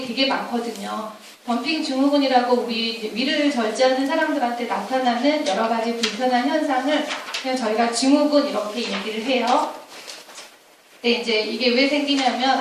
되게 많거든요. 덤핑 증후군이라고 우리 위를 절제하는 사람들한테 나타나는 여러 가지 불편한 현상을 그냥 저희가 증후군 이렇게 얘기를 해요. 근데 이제 이게 왜 생기냐면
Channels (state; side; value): identical; both; correlation 1.00